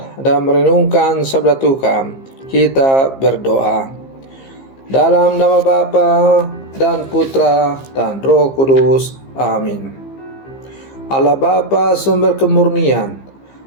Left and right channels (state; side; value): late; right; 15 ms